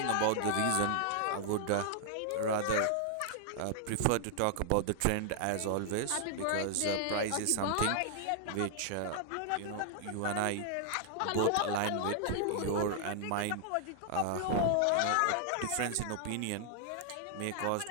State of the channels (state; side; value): different; both; correlation 0.00